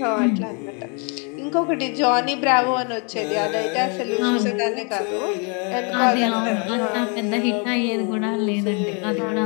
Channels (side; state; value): right; quieter; 35.8 dB